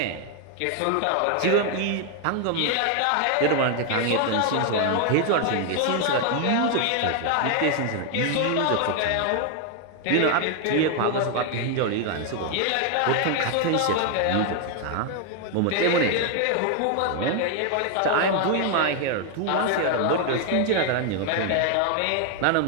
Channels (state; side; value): different; both; correlation 0.00